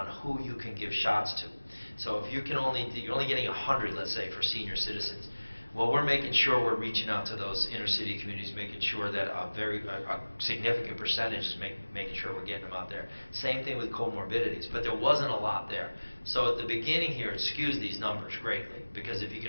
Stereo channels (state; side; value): inverted; both; correlation -1.00